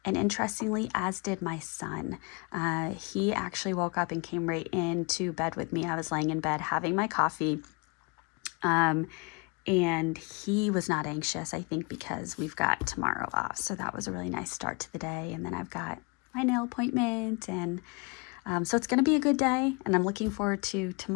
and interestingly, as did my son. He actually woke up and came right into bed with me. I was laying in bed having my coffee. And he was not anxious, I think, because we've got tomorrow off. So that was a really nice start to the day. And then I've got my nail appointment. And so it's going to be a good day. And I'm looking forward to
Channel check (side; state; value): right; quieter; 31.0 dB